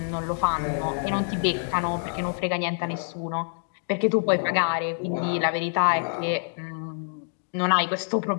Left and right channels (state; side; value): silent; right; 61 dB below the other